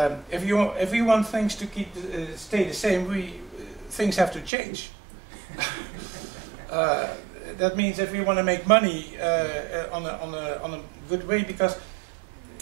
if we want things to stay the same, things have to change. That means if we want to make money on a good way, because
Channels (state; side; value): drops out; left; at 4.5 s